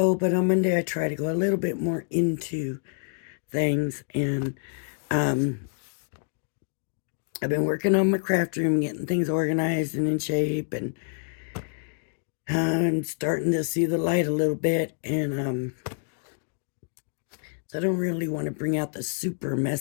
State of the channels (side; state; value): right; silent; digital silence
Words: I try to go a little bit more into things, and I've been working on my craft room, getting things organized and in shape, and I'm starting to see the light a little bit, and so I don't really want to bring out the super